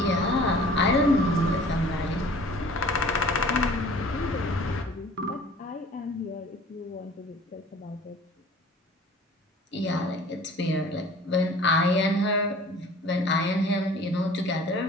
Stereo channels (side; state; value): both; normal; correlation 0.48